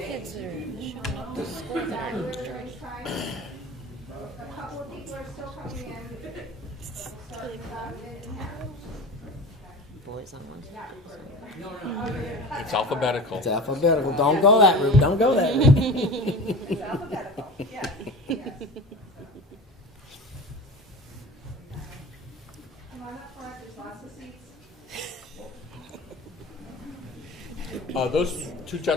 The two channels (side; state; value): both; normal; correlation 0.34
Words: kids that are showing up to school that are A couple of people are still coming in. boys on one side? It's alphabetical. It's alphabetical. Don't go that route. Don't go that route. It's alphabetical, yes, yes. Come on up front, there's lots of seats. Those two